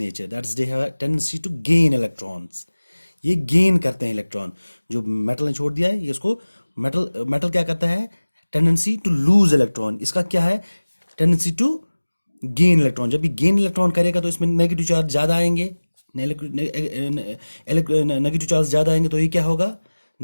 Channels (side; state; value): both; inverted; correlation -1.00